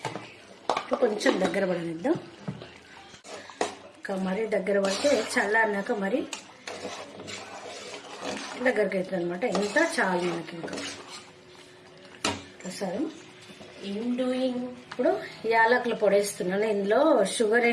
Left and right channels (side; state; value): both; identical; correlation 1.00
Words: కొంచెం దగ్గర పడనిద్దాం. ఇంకా మరీ దగ్గర పడితే చల్లారినాక మరి దగ్గరికి అవుతుంది అనమాట. ఇంత చాలు మనకి. ఇంకా ప్రసాదం ఇప్పుడు యాలకులు పొడి వేస్తున్నాను. ఇందులో షుగర్